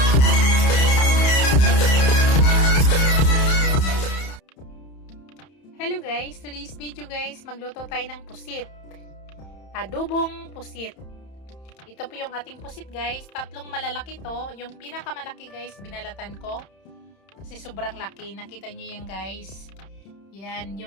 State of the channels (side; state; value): right; late; 31 ms